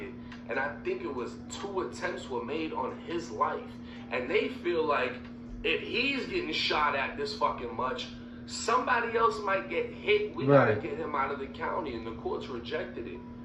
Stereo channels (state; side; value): identical; both; correlation 1.00